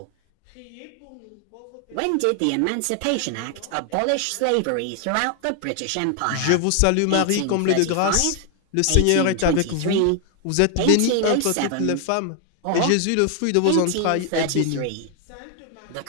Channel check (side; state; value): both; different; correlation 0.00